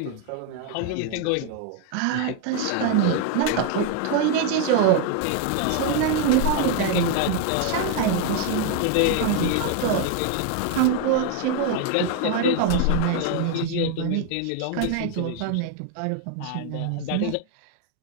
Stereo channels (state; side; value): different; both; correlation 0.01